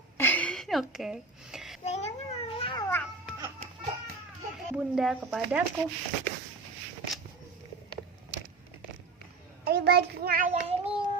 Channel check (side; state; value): left; quieter; 3.9 dB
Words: Oke. Kayaknya mau lewat. Bunda kepadaku. Di bajunya ayah ini